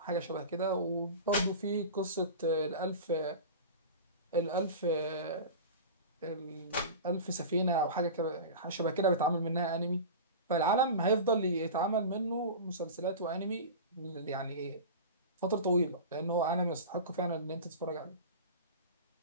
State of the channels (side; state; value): both; inverted; correlation -0.31